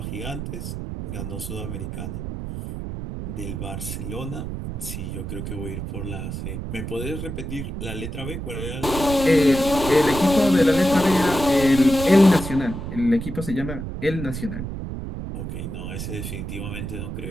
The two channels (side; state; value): right; noise; rumble, 6 dB below the sound